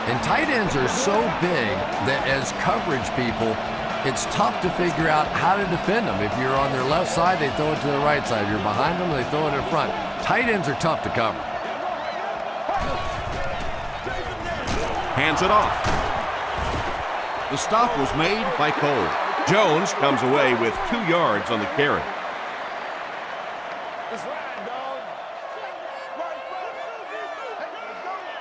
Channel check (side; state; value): both; identical; correlation 1.00